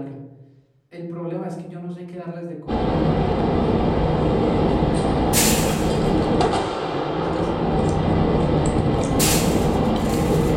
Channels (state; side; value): identical; both; correlation 1.00